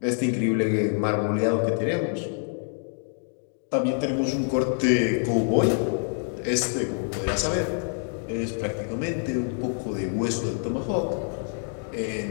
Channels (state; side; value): silent; right; 61 dB below the other